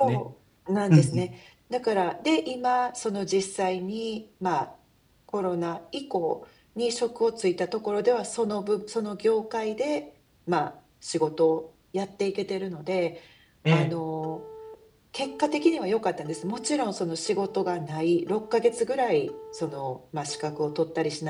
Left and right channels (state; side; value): identical; both; correlation 1.00